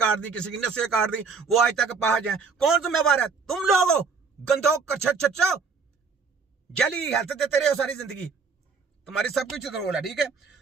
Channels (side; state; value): left; quieter; 5.0 dB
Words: दी, किसी की नसें काट दी, वो आज तक पहुंच जाए। कौन जिम्मेवार है? तुम लोग हो, गंदो कच्छो जली हेल्थ देते रहे हो सारी जिंदगी, तुम्हारी सब कुछ रोल है, ठीक है?